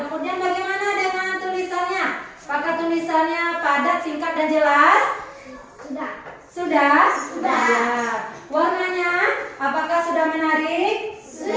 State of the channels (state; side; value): identical; both; correlation 1.00